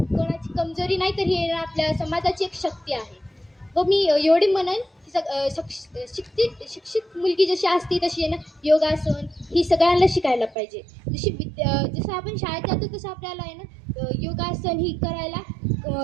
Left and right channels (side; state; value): left; drops out; at 10.6 s